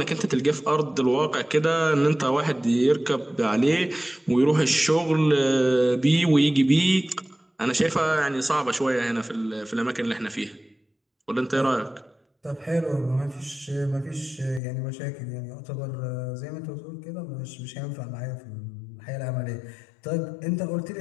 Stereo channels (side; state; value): right; drops out; at 14.6 s